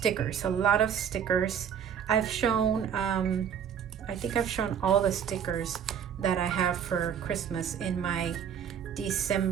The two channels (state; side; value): quieter; left; 8.3 dB